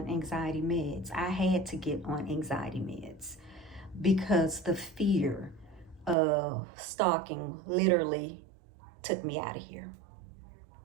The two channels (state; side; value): drops out; left; at 6.2 s